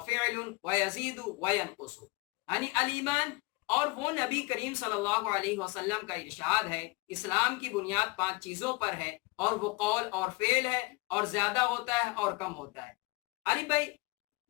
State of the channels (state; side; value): quieter; right; 25.2 dB